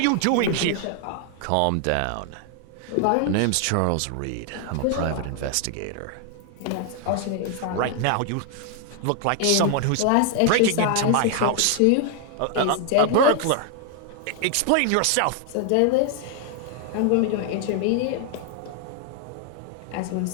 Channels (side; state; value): both; different; correlation 0.00